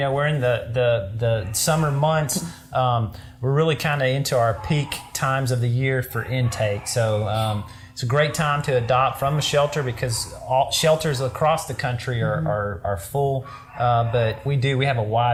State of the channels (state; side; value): identical; both; correlation 1.00